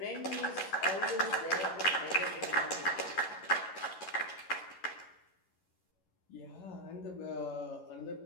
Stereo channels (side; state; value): right; late; 11 ms